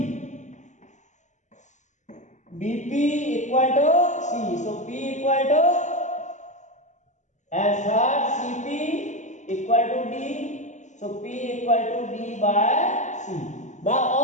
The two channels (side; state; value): right; late; 0.35 ms